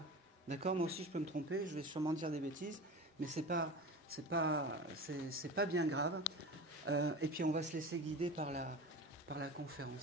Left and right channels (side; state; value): both; normal; correlation 0.32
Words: D'accord? Moi aussi, je peux me tromper, je vais sûrement dire des bêtises, mais c'est pas bien grave. Et puis, on va se laisser guider par la